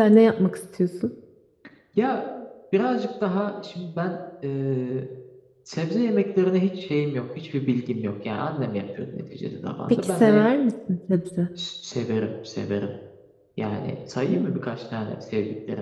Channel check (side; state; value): both; identical; correlation 1.00